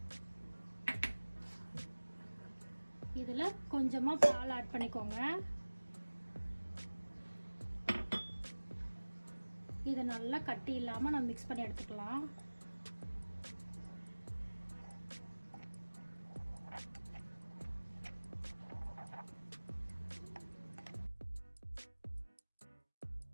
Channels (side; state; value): both; inverted; correlation -1.00